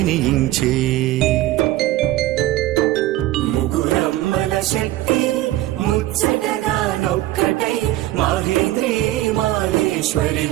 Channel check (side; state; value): left; quieter; 15.6 dB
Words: ముగురమ్మల శక్తి ముచ్చటగా నొక్కటై మాహేంద్రి మాహేశ్వరి